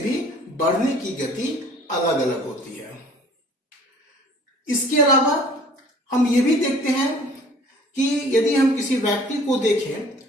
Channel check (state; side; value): normal; both; correlation 0.50